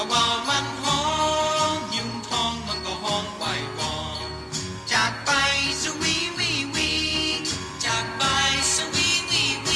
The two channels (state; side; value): identical; both; correlation 1.00